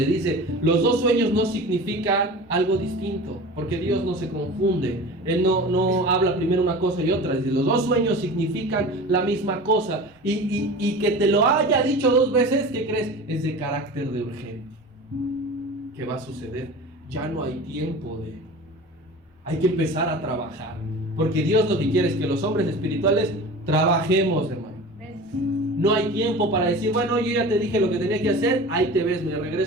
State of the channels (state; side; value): normal; both; correlation 0.36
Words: dice, los 2 sueños no significan algo distinto, porque Dios no se confunde. Él no habla primero una cosa y otra. Dice, los 2 sueños significan la misma cosa. Y que te lo haya dicho 2 veces, ¿qué crees? Es de carácter de urgente. ¿Qué va a suceder? Ya no hay tiempo hay que empezar a trabajar. Porque Dios lo que quiere es que los hombres espirituales trabajemos, hermano. No hay tiempo para decir, bueno, yo ya te dije lo que tenía que hacer, ahí te ves, me